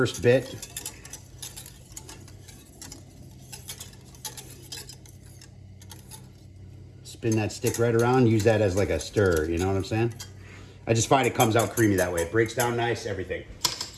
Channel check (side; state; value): both; identical; correlation 1.00